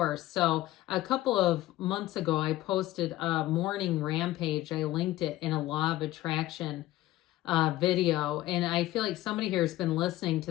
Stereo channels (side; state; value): right; quieter; 15.9 dB